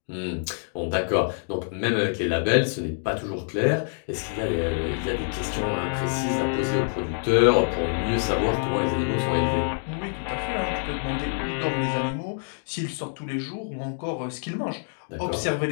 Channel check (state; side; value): silent; right; digital silence